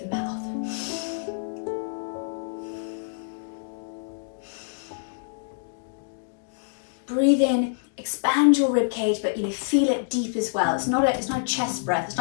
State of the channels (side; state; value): right; silent; digital silence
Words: mouth. Breathe in, expand your rib cage, but feel it deep as well. It's not a chest breath.